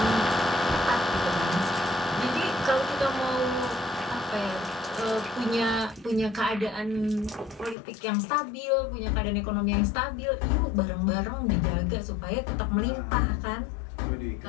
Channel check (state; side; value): drops out; right; at 7.8 s